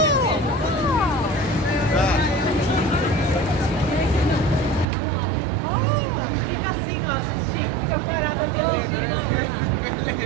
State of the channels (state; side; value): drops out; left; at 4.9 s